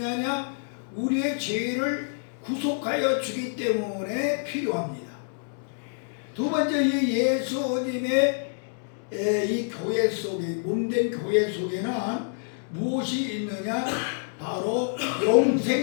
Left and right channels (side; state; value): right; silent; digital silence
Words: 우리의 죄를 구속하여 주기 때문에 필요합니다. 두 번째, 이 예수님의 이 교회 속에, 몸된 교회 속에는 무엇이 있느냐? 바로